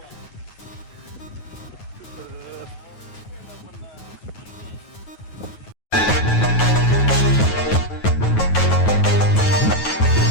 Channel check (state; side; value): late; right; 9.3 ms